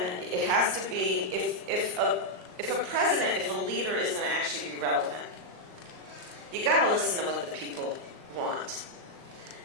it has to be, if a president, if a leader is going to actually be relevant, you got to listen to what the people want.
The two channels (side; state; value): left; late; 38 ms